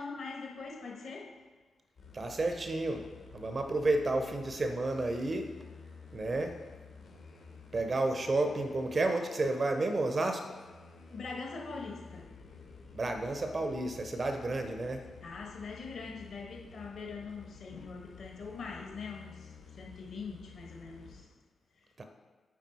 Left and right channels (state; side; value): normal; both; correlation 0.90